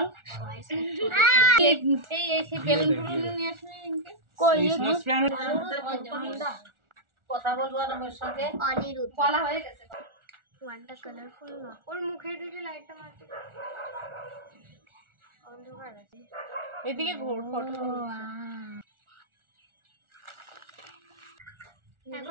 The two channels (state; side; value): late; left; 1.4 ms